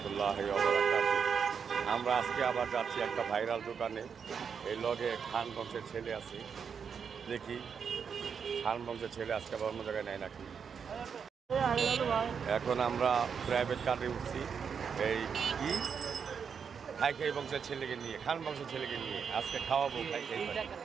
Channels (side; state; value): left; quieter; 6.6 dB